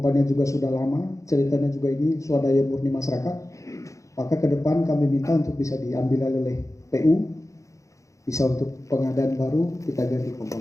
juga sudah lama, ceritanya juga ini swadaya murni masyarakat, maka ke depan kami minta untuk bisa diambil oleh PU, bisa untuk pengadaan baru kita ganti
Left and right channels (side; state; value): right; late; 0.15 ms